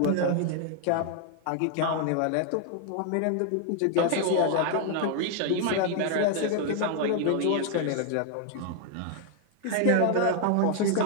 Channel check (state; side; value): different; both; correlation 0.00